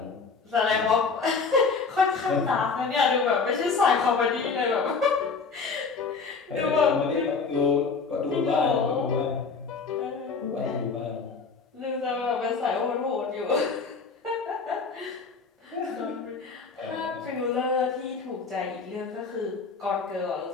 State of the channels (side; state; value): right; quieter; 4.9 dB